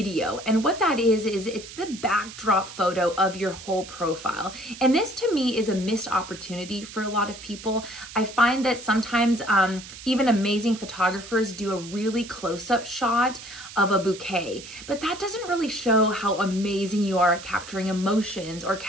And what that is it's the backdrop photo of your whole profile. And this to me is a missed opportunity for a lot of people. I find that sometimes even amazing photographers do a really close-up shot of a bouquet, but that doesn't really show how amazing you are at capturing emotions or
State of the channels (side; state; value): right; noise; hiss, 14 dB below the sound